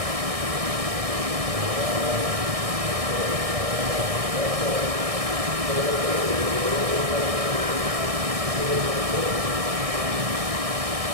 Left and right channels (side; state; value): left; late; 1.6 ms